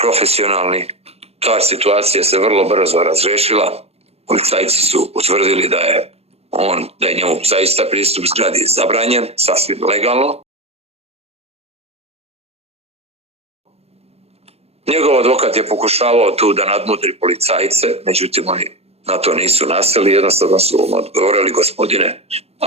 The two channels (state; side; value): late; left; 0.29 ms